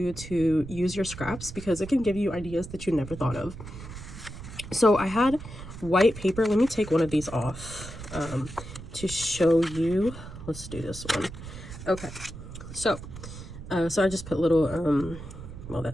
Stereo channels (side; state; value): right; noise; rumble, 12 dB below the sound